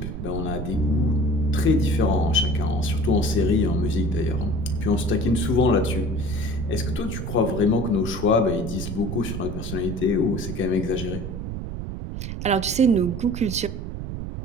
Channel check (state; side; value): noise; right; rumble, 6 dB below the sound